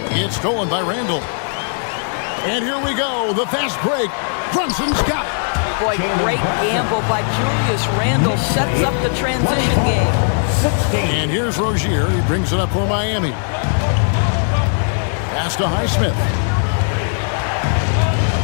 It's stolen by Randall. And here we go, the fast break. Brunson's got it. Boy, great gamble by Julius Randle. Sets up the transition game. And here's Rozier. He brings it up for Miami. Pass to Highsmith.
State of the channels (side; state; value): right; silent; 60 dB below the other